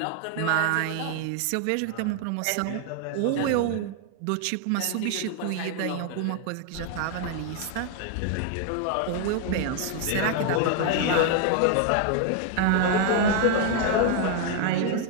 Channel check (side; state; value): both; different; correlation 0.00